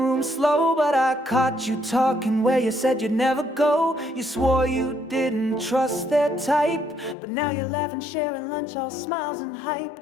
slow, but I caught you talking where you said you'd never go. You swore you didn't trust their type, but now you're laughing, sharing lunch, all smiles and hype.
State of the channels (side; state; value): right; drops out; at 7.2 s